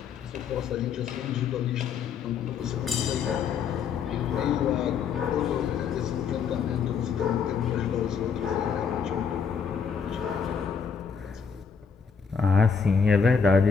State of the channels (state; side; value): quieter; right; 6.3 dB